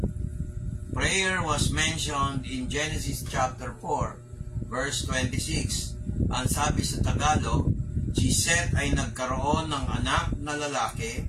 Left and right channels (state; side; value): identical; both; correlation 1.00